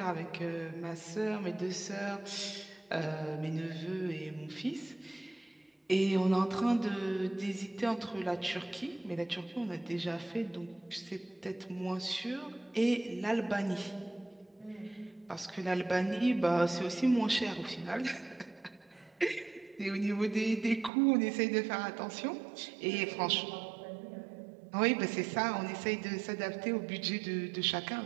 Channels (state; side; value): drops out; left; at 20.9 s